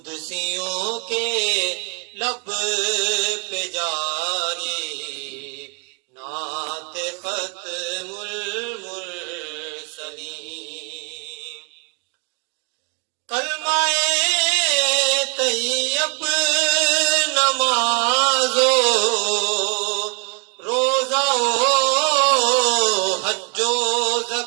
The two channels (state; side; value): quieter; left; 36.4 dB